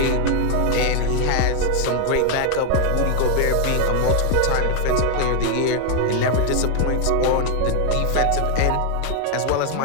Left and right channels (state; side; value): different; both; correlation 0.00